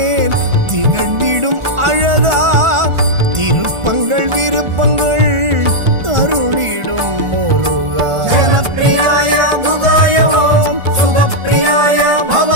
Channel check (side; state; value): left; late; 1.4 ms